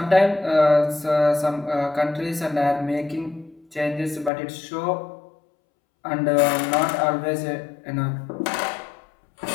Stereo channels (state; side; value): drops out; right; at 4.3 s